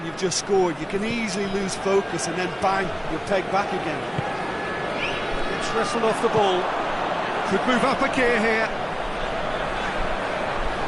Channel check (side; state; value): both; identical; correlation 1.00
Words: you've just scored. You can easily lose focus and then bang, you're pegged back again. It's wrestled off the ball. Could move up a gear here.